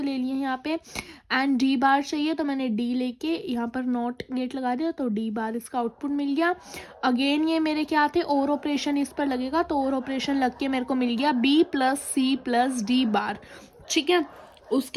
ले लिए यहाँ पे। एंड डी बार चाहिए, तो मैंने डी लेके यहाँ पर नॉट गेट लगा दिया, तो डी बार इसका आउटपुट मिल गया। अगेन ये मेरे क्या थे, और ऑपरेशन इस पर लगेगा, तो और ऑपरेशन लग के मेरे को मिल गया B plus C plus D bar, ठीक है।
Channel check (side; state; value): both; identical; correlation 1.00